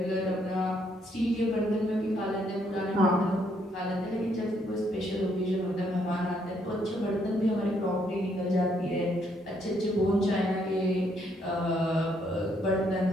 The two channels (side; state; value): both; normal; correlation 0.71